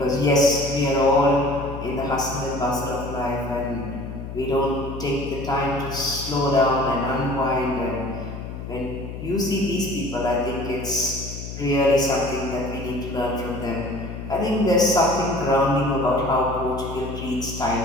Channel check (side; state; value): left; noise; hum, 9 dB below the sound